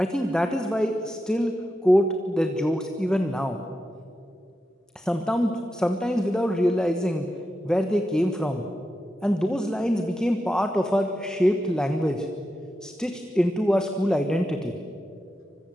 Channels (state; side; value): normal; both; correlation 0.88